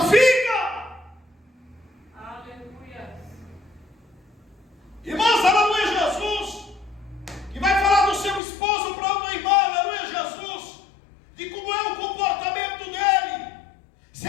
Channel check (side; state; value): right; drops out; at 8.4 s